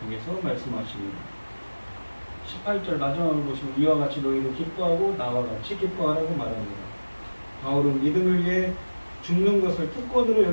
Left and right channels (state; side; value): inverted; both; correlation -1.00